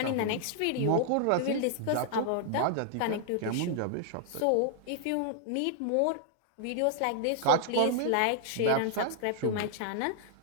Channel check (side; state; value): both; different; correlation 0.00